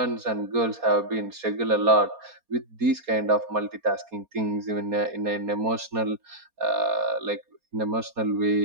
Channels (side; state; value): left; late; 4.2 ms